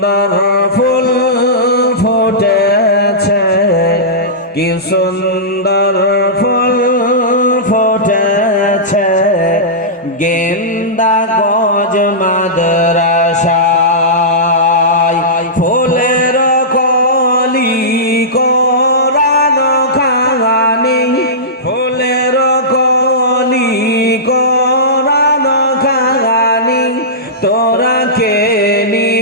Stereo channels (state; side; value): normal; both; correlation -0.17